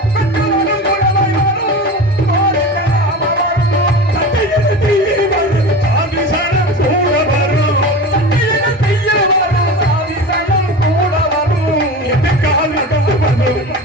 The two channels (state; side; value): normal; both; correlation 0.30